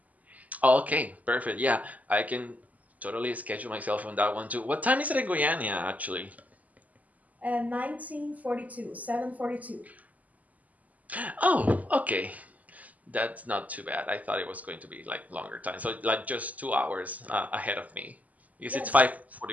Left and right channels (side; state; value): left; late; 0.076 ms